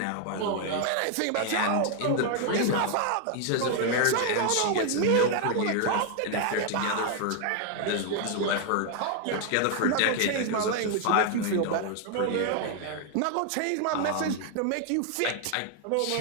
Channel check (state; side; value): different; both; correlation 0.00